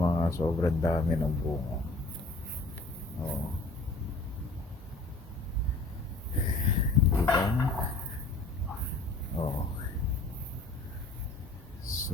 sobrang dami ng bunga. Oh. Diba? Oh.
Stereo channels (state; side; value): quieter; right; 3.1 dB